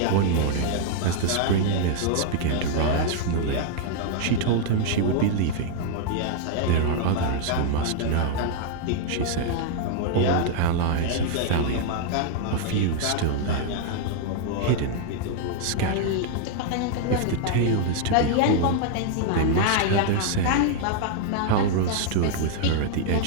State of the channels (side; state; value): both; different; correlation 0.00